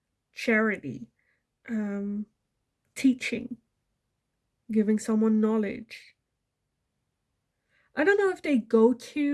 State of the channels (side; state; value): both; identical; correlation 1.00